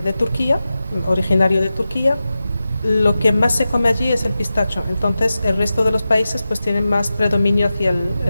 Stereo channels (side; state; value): both; inverted; correlation -0.93